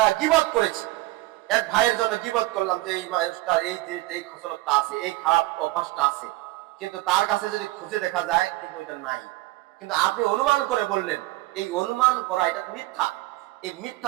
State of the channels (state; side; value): quieter; left; 19.3 dB